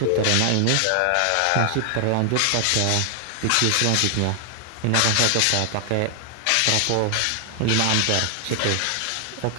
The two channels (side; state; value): both; different; correlation 0.00